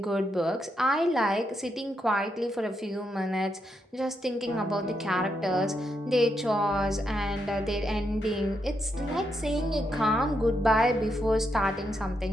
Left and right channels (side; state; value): both; normal; correlation 0.81